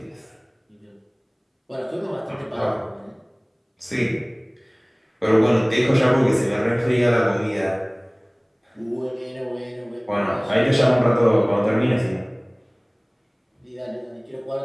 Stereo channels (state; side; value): identical; both; correlation 1.00